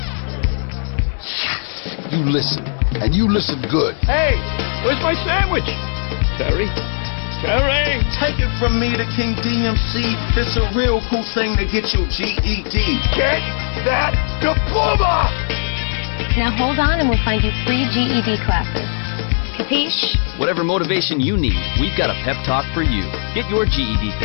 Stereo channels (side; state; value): right; silent; 67 dB below the other